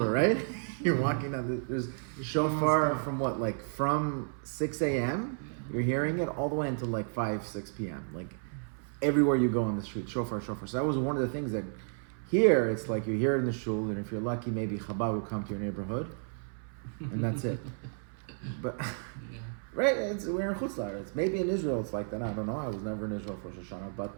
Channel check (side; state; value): left; silent; 56 dB below the other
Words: right? You're walking down, there's shofar from from 6 a.m., you're hearing it all the way until 5, 6 p.m. Everywhere you go on the street, shofar. So that was one of the things that here, it's you hear it in the shul, and if you're lucky, maybe Chabad will come to your neighborhood, and that's it. But, right, we're in Chutz La'aretz. Maybe in Israel it's like that, I don't know, I was never in Israel for Rosh Hashanah,